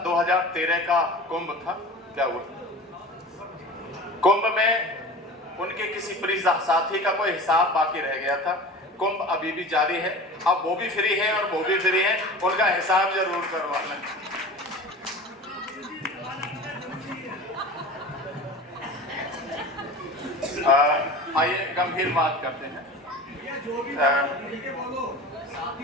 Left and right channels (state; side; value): normal; both; correlation 0.36